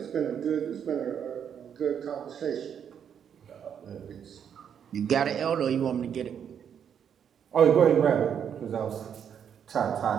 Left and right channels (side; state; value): left; quieter; 8.2 dB